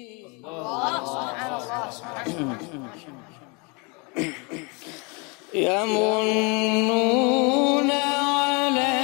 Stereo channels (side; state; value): right; quieter; 30.8 dB